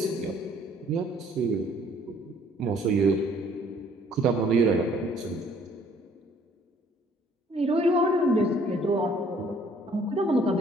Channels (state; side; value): normal; both; correlation 0.59